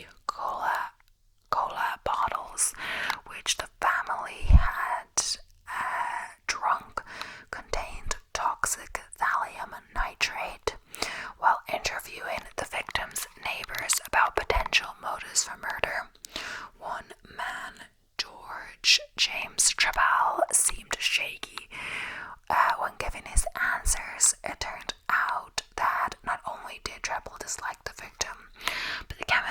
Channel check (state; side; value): identical; both; correlation 1.00